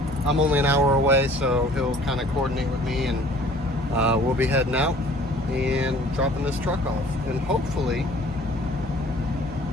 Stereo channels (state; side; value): normal; both; correlation 0.52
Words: I'm only an hour away, so he'll kind of coordinate with me, and we'll be heading out and dropping this truck off. And hopefully